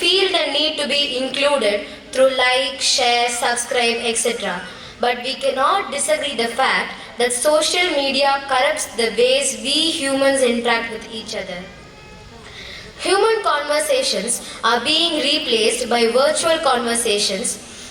the need to be included through like, share, subscribe, etc. But we cannot disagree the fact that social media corrupts the ways we humans interact with each other. Human conversations are being replaced by virtual conversations,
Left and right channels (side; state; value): both; identical; correlation 1.00